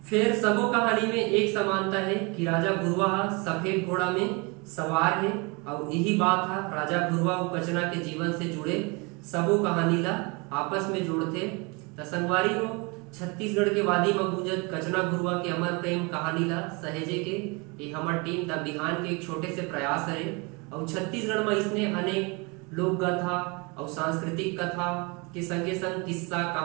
फिर सबो कहानी में एक समानता है कि राजा गुरुआ सफेद घोड़ा में सवार है और यही बात है राजा गुरुआ और कचना के जीवन से जुड़े सबो कहानी ला आपस में जोड़ते। त संगवारी हो छत्तीसगढ़ के वादी में गुंजत कचना गुरुआ के अमर प्रेम कहानी ला सहेजे के ये हमार टीम द बिहान के एक छोटे से प्रयास है। और छत्तीसगढ़ में इसने अनेक लोक कथा और सांस्कृतिक कथा के संगे संग किस्सा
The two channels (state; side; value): quieter; left; 29.1 dB